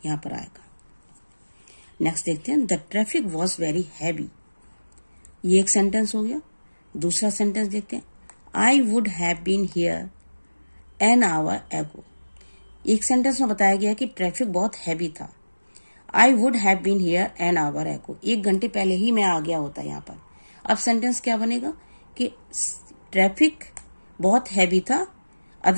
यहाँ पर आएगा. नेक्स्ट देखते हैं. The traffic was very heavy. ये एक सेंटेंस हो गया. दूसरा सेंटेंस देखते हैं. I would have been here an hour ago. एक सेंटेंस में बताया गया कि ट्रैफिक बहुत हैवी था. I would have been here an hour ago, 1 घंटे पहले ही मैं आ गया होता यहाँ पर. अब सेंटेंस क्या बनेगा कि ट्रैफिक बहुत हैवी था,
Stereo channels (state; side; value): inverted; both; correlation -1.00